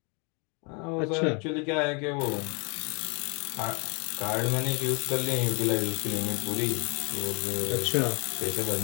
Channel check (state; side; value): quieter; right; 33.1 dB